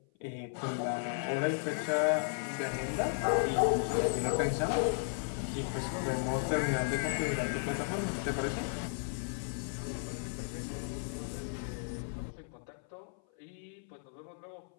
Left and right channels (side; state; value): right; silent; 55 dB below the other